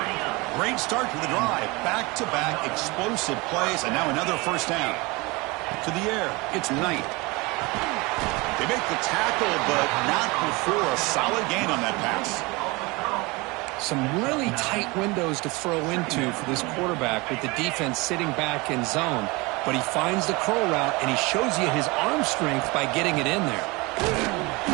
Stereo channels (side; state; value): left; quieter; 24.9 dB